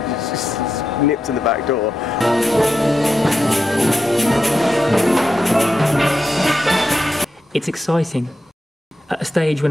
just nipped in the back door. It's exciting at a stage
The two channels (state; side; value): normal; both; correlation 0.87